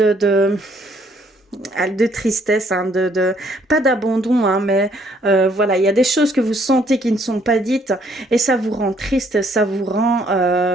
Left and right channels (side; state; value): both; normal; correlation 0.66